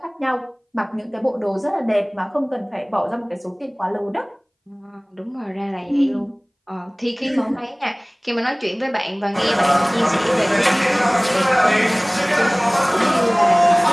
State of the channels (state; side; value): identical; both; correlation 1.00